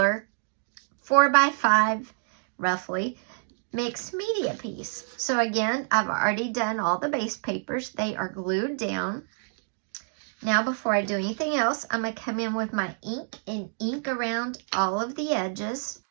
4x5, roughly, mixed media piece. So again, I've already done all the base papers. They are glued down. Now before I do anything else, I'm going to come in with my ink and ink around all of the edges.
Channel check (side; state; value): left; silent; digital silence